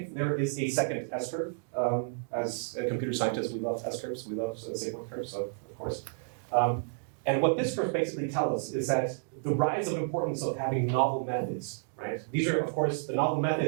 there is a second S-curve. As computer scientists, we love S-curves, we love sigma curves, so of course. And what this curve basically tells us is that the rise of importance of having novel methods, right? These are, of course, the novel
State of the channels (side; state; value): left; silent; digital silence